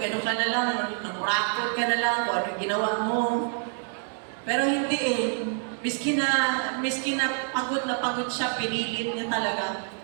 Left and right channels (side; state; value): left; silent; 60 dB below the other